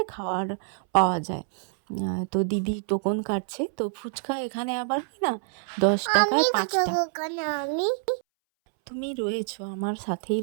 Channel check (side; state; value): left; silent; 60 dB below the other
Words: খাওয়ার পাওয়া যায়। তো দিদি টোকন কাটছে। তো ফুচকা এখানে আবার কি না 10 টাকায় 5টা। তুমি রয়েছো, আমার সাথেই